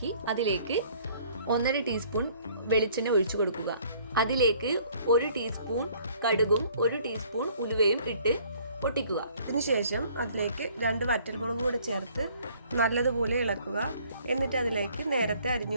അതിലേക്ക് 1.5 ടീസ്പൂൺ വെളിച്ചെണ്ണ ഒഴിച്ചു കൊടുക്കുക. അതിലേക്ക് 1 ടീസ്പൂൺ കടുകും 1 ടീസ്പൂൺ ഉലുവയും ഇട്ട് പൊട്ടിക്കുക. അതിനുശേഷം അതിലേക്ക് 2 വറ്റൽമുളക് കൂടെ ചേർത്ത് നല്ലതുപോലെ ഇളക്കുക. എന്നിട്ട് അതിലേക്ക് നേരത്തെ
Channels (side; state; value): both; inverted; correlation -0.58